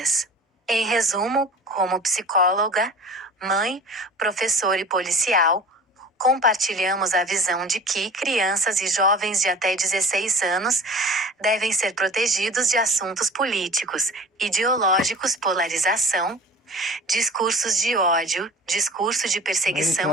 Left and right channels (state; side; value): normal; both; correlation 0.41